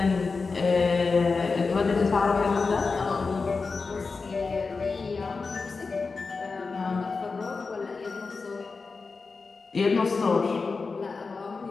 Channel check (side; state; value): right; quieter; 4.4 dB